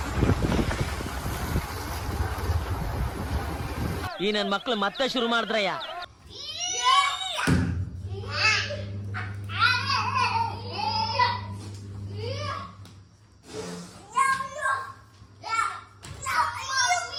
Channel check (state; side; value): identical; both; correlation 1.00